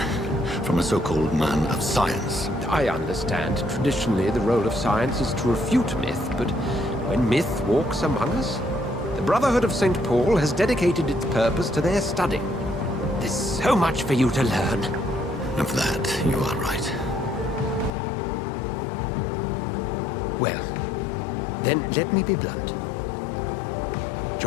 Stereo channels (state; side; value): drops out; right; at 17.9 s